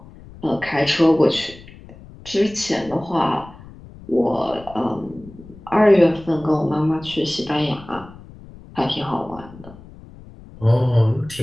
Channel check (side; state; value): left; noise; rumble, 19 dB below the sound